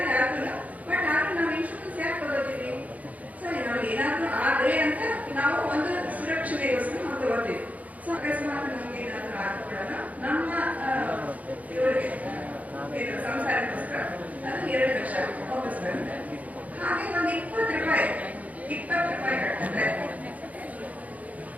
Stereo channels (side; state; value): left; late; 0.073 ms